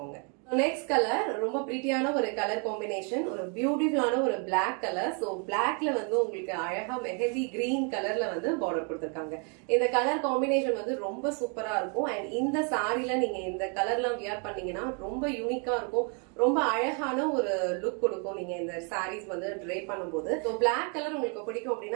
நெக்ஸ்ட் கலர் ரொம்ப பிரிட்டியான ஒரு கலர் காம்பினேஷன் ஒரு பியூட்டிஃபுல்லான ஒரு பிளாக் கலர் சோ பிளாக்ல வந்து உங்களுக்கு அழகா மெஹந்தி கிரீன் கலர்ல வந்து பார்டர் கொடுத்திருக்காங்க இந்த கலர் காம்பினேஷன் வந்து ரொம்ப சூப்பரா இருக்கும் அண்ட் இந்த சாரில நீங்க இந்த கலர்லாம் வியர் பண்ணீங்கன்னா ரொம்ப யூனிக்கா இருக்கும் ரொம்ப அழகான ஒரு லுக் கொடுக்கும் நீங்க இந்த சாரீஸ் வந்து ட்ரை பண்ணும்போது ஸோ பிளாக் கலர் உங்களுக்கு பிடிக்கும்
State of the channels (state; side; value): quieter; left; 37.8 dB